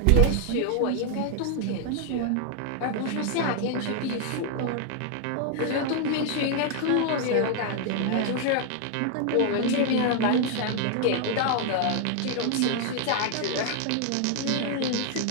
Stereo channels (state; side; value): different; both; correlation 0.00